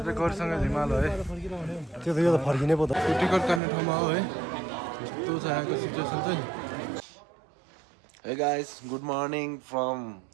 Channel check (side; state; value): left; drops out; at 3.6 s